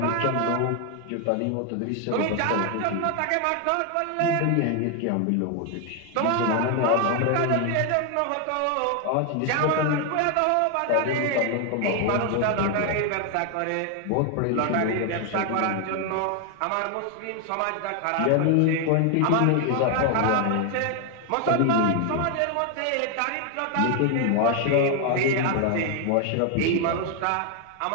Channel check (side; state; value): both; different; correlation 0.01